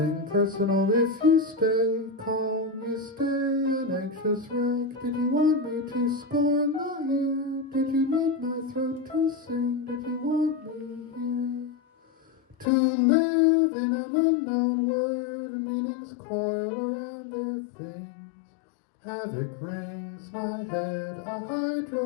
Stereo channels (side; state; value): right; drops out; at 12.7 s